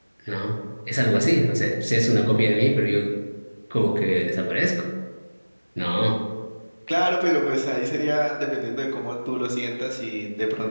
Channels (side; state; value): both; inverted; correlation -1.00